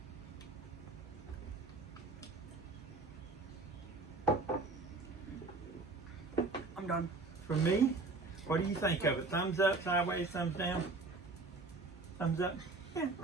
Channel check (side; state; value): left; quieter; 3.7 dB